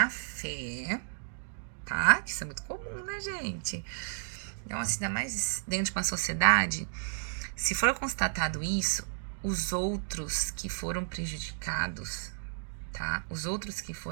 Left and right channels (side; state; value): left; silent; digital silence